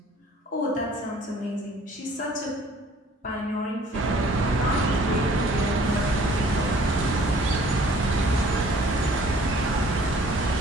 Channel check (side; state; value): both; normal; correlation 0.55